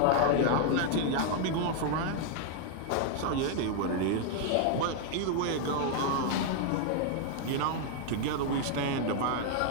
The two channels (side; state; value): both; different; correlation 0.00